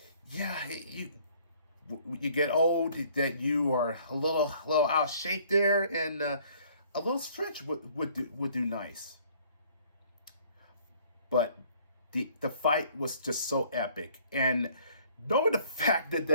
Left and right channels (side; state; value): both; inverted; correlation -0.58